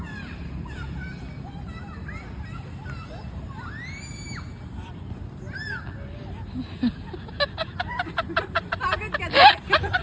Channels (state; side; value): identical; both; correlation 1.00